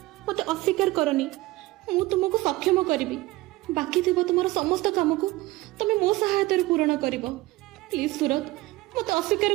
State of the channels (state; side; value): quieter; left; 19.3 dB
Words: मते अस्वीकार करनी मु तुमको सक्षम करिवि बाकी थिबो तुमर समस्त काम को तमे मो सहायता रे पूर्ण करिवो। प्लीज सूरज मते अस्वीकार